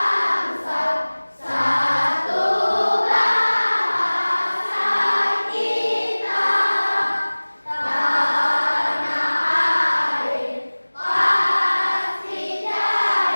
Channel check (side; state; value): both; inverted; correlation -1.00